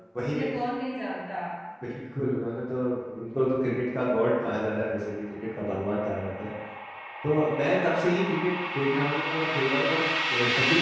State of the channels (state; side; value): identical; both; correlation 1.00